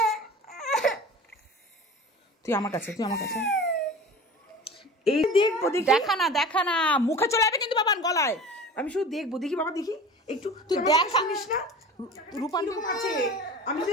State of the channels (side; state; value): both; normal; correlation 0.38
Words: তুই আমার কাছে, তুই আমার কাছে, এই দেখবো, দেখি দেখা না, দেখা না, মুখে চলে যাবে কিন্তু বাবান গলায়। আমি শুধু দেখবো, দেখি বাবা দেখি একটু, তুই আমাকে দেখা শুনিস না রূপান্টি কিরকম আছে, আমি